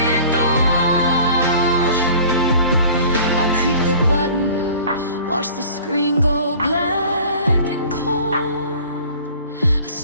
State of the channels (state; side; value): inverted; both; correlation -0.46